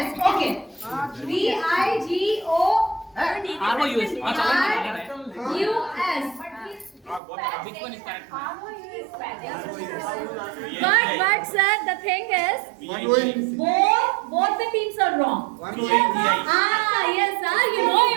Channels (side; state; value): left; drops out; at 7.2 s